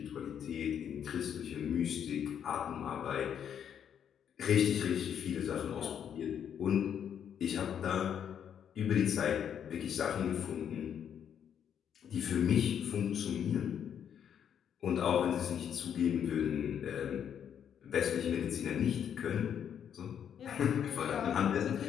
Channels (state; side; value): quieter; right; 8.7 dB